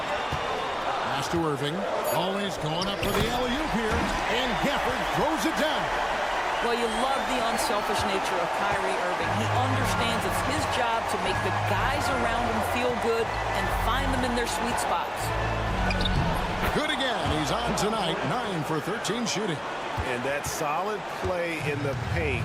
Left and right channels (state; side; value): identical; both; correlation 1.00